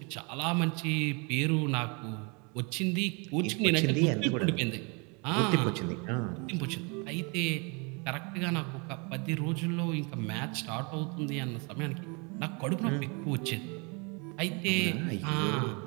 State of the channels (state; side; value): quieter; left; 31.9 dB